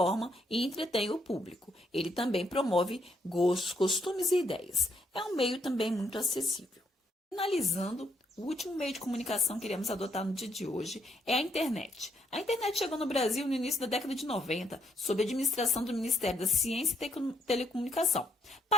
e entretém o público. Ele também promove gostos, costumes e ideias. É um meio também muito acessível. Finalizando, o último meio de comunicação que iremos adotar no dia de hoje é a internet. A internet chegou no Brasil no início da década de 90, sob a administração do Ministério da Ciência e Telecomunicação,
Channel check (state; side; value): normal; both; correlation 0.74